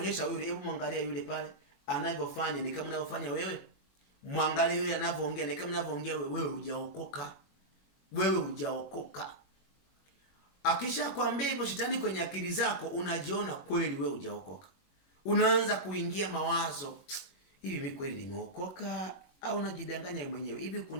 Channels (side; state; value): right; late; 21 ms